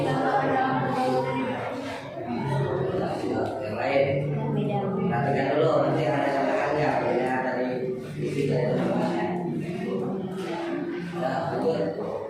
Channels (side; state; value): both; identical; correlation 1.00